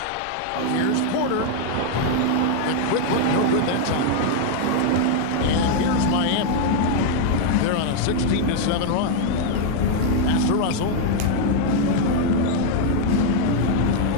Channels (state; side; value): different; both; correlation 0.00